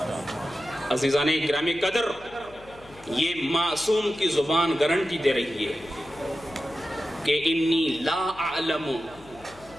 عزیزان گرامی قدر، یہ معصوم کی زبان گارنٹی دے رہی ہے کہ انی لا اعلم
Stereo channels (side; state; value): left; noise; hum, 22 dB below the sound